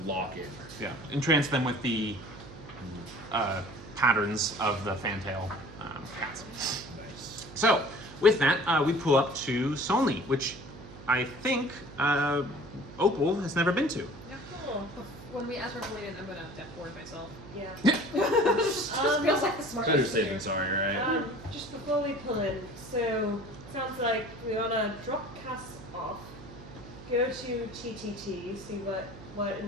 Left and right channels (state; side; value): noise; right; hum, 16 dB below the sound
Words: lock in. entrance them with the patterns of the fantail cats. Nice. So with that, we pull up to Solni, which I think Opal has never been to. Yeah, cool. When we ask her for Layden, I'm gonna death ward myself. Yeah. Just feels like the smartest Better thing safe to than do. sorry, right? Just before we pull in, so sounds like we wanna drop Cass off, go to TTT, see what